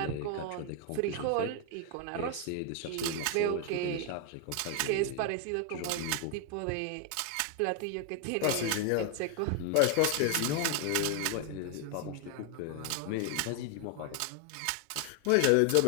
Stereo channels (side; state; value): both; different; correlation 0.01